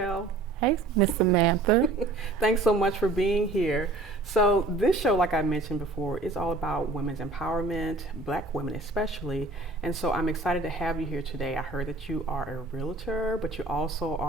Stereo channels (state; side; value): quieter; left; 3.0 dB